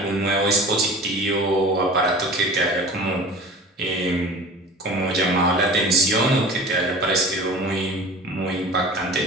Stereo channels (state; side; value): normal; both; correlation 0.39